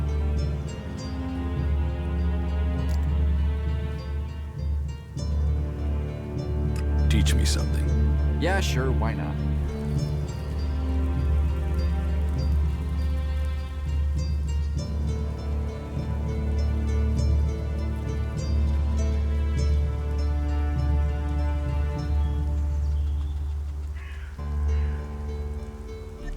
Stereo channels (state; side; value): identical; both; correlation 1.00